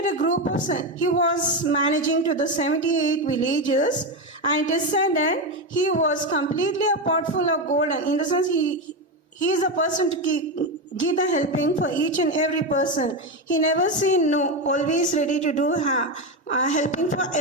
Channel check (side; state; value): both; normal; correlation 0.13